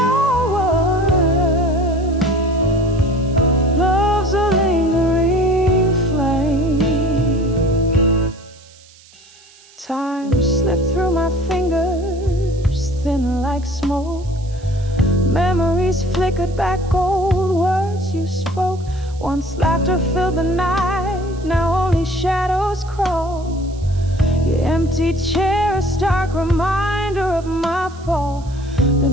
Love's a lingering flame. Time slipped through my fingers, thin like smoke. Memories flickered back, old words you spoke. Once laughter filled the night, now only shadows crawl. Your empty chair, a stark reminder of my fall. The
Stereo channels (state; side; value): noise; right; hiss, 25 dB below the sound